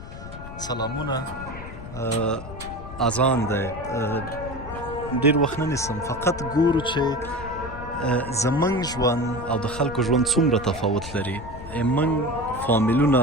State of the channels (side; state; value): left; noise; rumble, 12 dB below the sound